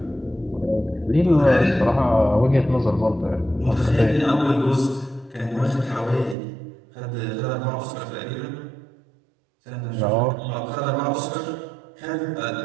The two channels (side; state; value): left; drops out; at 6.4 s